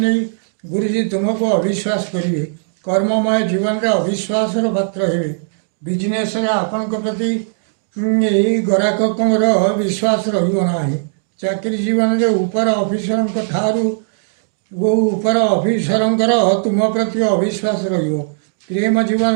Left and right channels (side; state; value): left; silent; digital silence